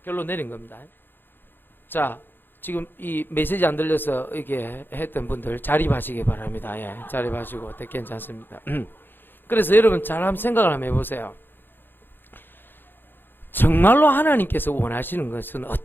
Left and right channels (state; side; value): late; right; 0.097 ms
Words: 결론 내린 겁니다. 자, 지금 이 메시지 안 들려서 이렇게 했던 분들 자립하시기 바랍니다. 예, 자립하시고 괜찮습니다. 그래서 여러분 잘 한번 생각을 한번 해보세요. 정말로 하나님께서 원하시는 것은